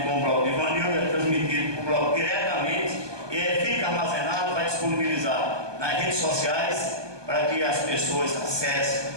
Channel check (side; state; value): left; late; 1.2 ms